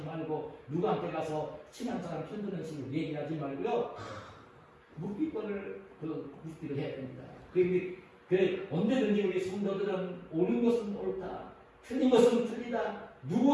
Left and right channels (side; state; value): both; identical; correlation 1.00